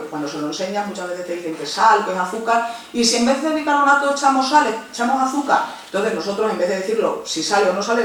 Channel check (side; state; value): both; identical; correlation 1.00